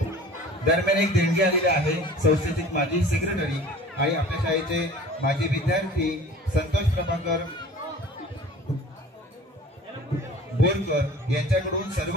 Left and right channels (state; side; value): normal; both; correlation 0.44